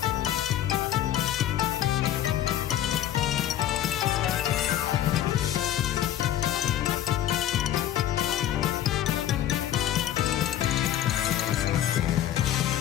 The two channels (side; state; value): right; quieter; 11.9 dB